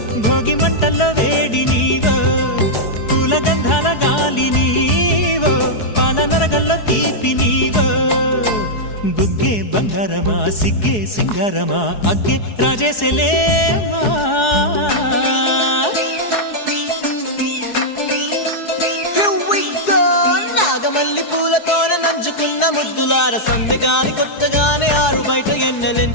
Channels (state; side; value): late; right; 4.7 ms